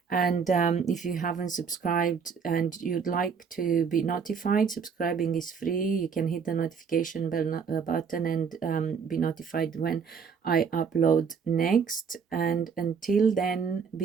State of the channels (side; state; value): left; quieter; 6.2 dB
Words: And if you haven't subscribed and you'd like to be notified, subscribing is free. You can hit the notification bell button and be notified when I upload next. And until then,